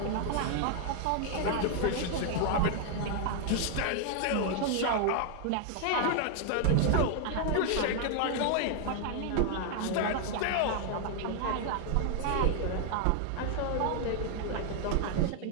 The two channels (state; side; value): different; both; correlation 0.00